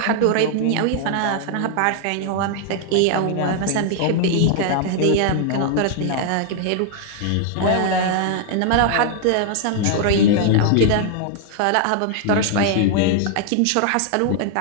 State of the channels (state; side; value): different; both; correlation 0.00